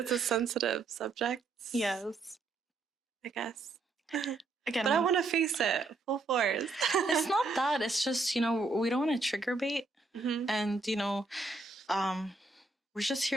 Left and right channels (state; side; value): quieter; left; 3.5 dB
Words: a sensitive subject. Yes. I guess. Again, but I want to face it full force. It's not that. It's just, you know, we don't want to trigger bait. And, you know, we're just